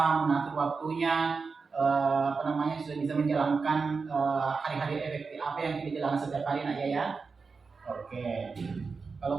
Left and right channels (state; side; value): quieter; left; 4.7 dB